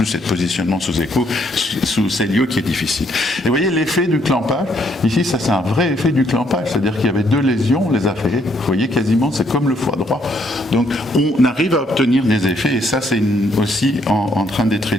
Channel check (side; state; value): both; normal; correlation 0.70